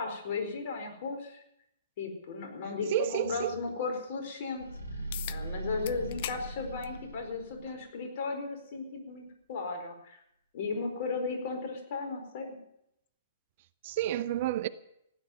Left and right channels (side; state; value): both; inverted; correlation -0.48